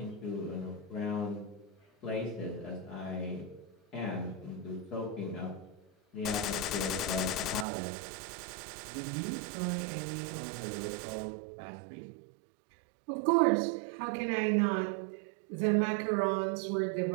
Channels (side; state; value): left; drops out; at 7.7 s